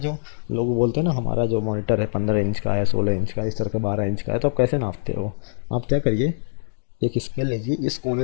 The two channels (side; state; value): right; silent; digital silence